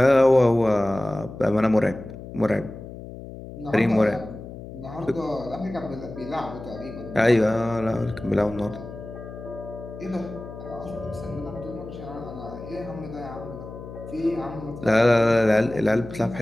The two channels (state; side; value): noise; left; hum, 13 dB below the sound